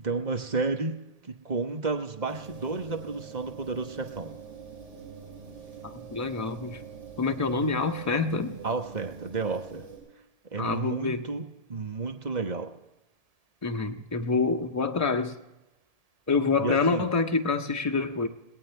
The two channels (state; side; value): late; left; 1.7 ms